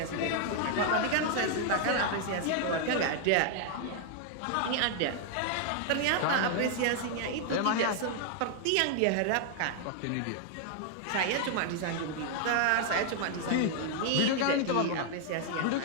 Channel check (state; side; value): different; both; correlation 0.00